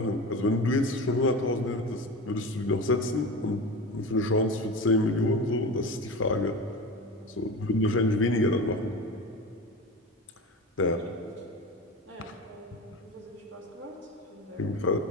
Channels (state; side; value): normal; both; correlation 0.28